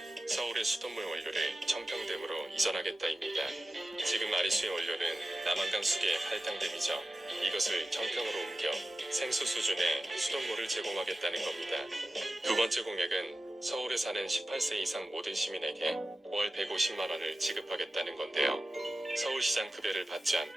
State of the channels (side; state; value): both; normal; correlation 0.95